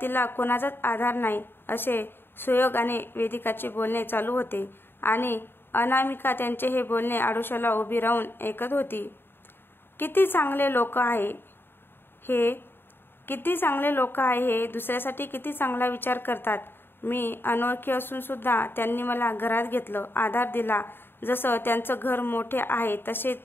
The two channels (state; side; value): late; right; 0.10 ms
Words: तिला कोणाचाच आधार नाही, असे सुयोग आणि वेदिकाचे बोलणे चालू होते आणि अनामिका त्यांचे हे बोलणे आडोशाला उभी राहून ऐकत होती. किती चांगले लोक आहे हे, दुसऱ्यासाठी किती चांगला विचार करतात. मी अनोळखी असून सुद्धा त्यांनी मला घरात घेतलं, आधार दिला. जसं त्यांचं घर मोठे आहे